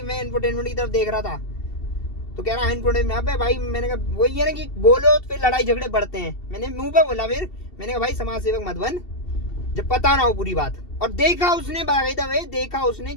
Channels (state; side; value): late; right; 2.7 ms